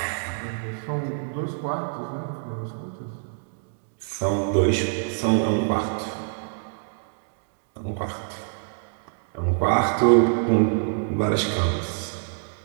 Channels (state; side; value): silent; left; digital silence